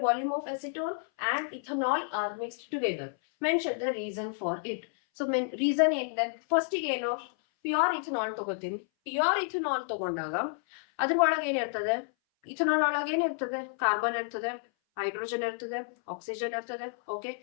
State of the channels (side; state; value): right; silent; 58 dB below the other